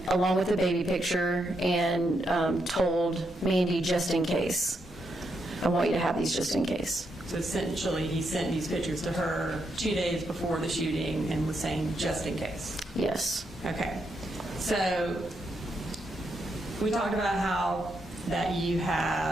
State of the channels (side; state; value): both; normal; correlation 0.81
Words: with the baby picture, and told Mandy, just in case. I want you to have these just in case. So essentially, he sent these pictures to her 2 days before the shooting and was saying, just in case. Yes. Okay. So we talked about how that you